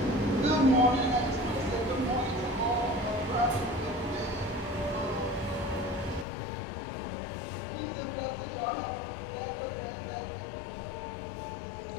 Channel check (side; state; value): right; drops out; at 6.2 s